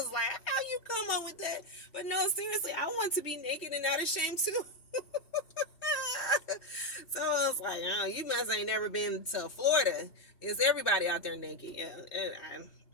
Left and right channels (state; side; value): late; right; 3.1 ms